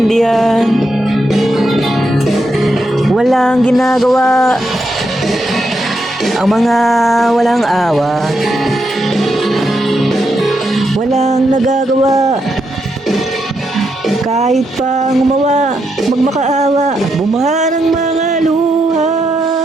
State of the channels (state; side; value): normal; both; correlation 0.82